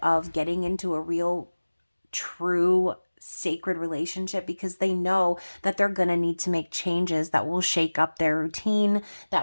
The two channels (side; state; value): both; inverted; correlation -1.00